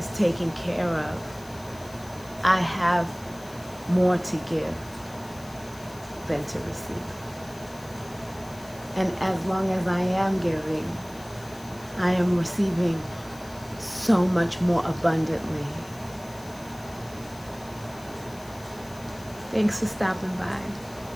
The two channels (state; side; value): noise; left; hiss, 21 dB below the sound